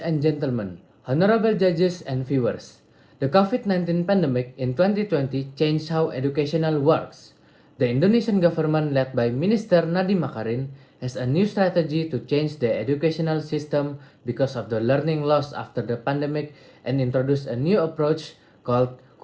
and gentlemen, honorable judges and viewers, the COVID-19 pandemic in 2020 changed how educational works. The Indonesian government led by Minister Nadiem Makarin has a new strategy to change the educational system because of the learning loss after the pandemic and introduced a new approach called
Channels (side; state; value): both; identical; correlation 1.00